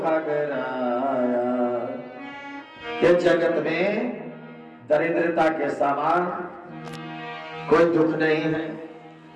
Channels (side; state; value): both; identical; correlation 1.00